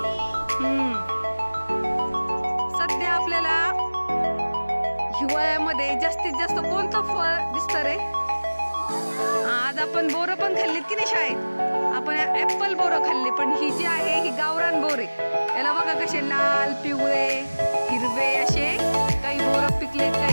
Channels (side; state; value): both; inverted; correlation -1.00